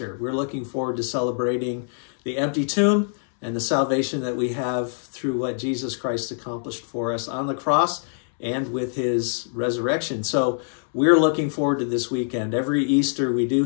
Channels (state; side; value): silent; right; 62 dB below the other